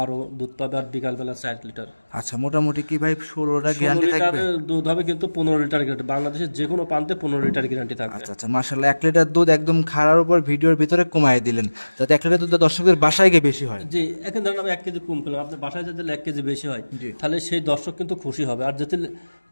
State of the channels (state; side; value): inverted; both; correlation -1.00